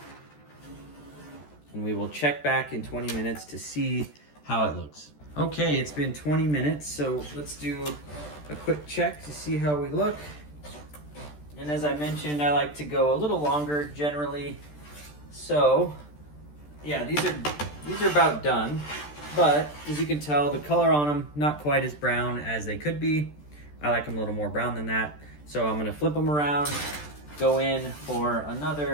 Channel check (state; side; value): late; right; 13 ms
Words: And we will check back in 20 minutes to see how it looks. Okay, it's been 20 minutes, so let's do a quick check to see how we look. And as I mentioned, I like to go a little longer generally. So, yeah, these are about done. But as you can tell, the color on them, not quite as brown as they could be. I like them a little more brown than that. So I'm gonna flip them around, go in for